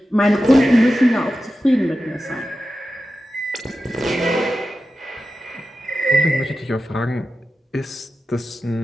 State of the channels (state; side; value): normal; both; correlation 0.92